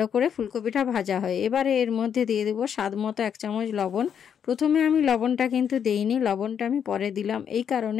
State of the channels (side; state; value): right; quieter; 8.1 dB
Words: করে ফুলকপিটা ভাজা হয়। এবারে এর মধ্যে দিয়ে দেবো স্বাদ মতো 1 চামচ লবণ। প্রথমে আমি লবণটা কিন্তু দেইনি, লবণটা আমি পরে দিলাম। এই